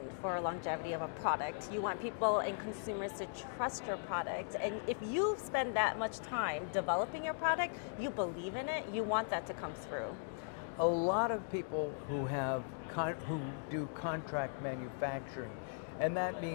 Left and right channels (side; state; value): right; silent; digital silence